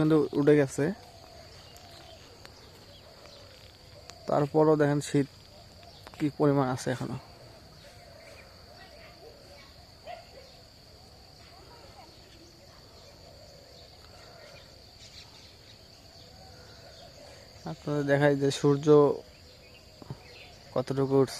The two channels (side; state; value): both; identical; correlation 1.00